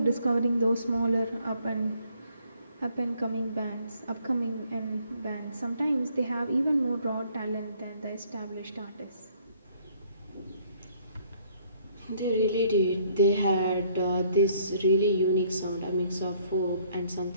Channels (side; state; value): both; inverted; correlation -0.64